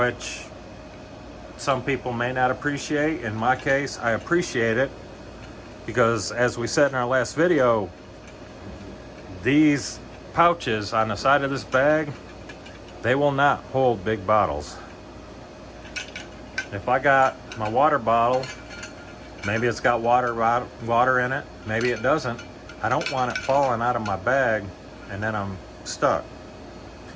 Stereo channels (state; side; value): identical; both; correlation 1.00